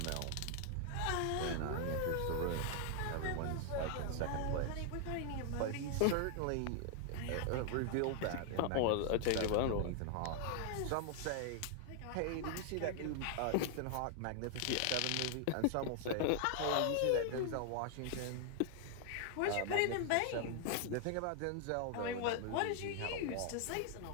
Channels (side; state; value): both; different; correlation 0.00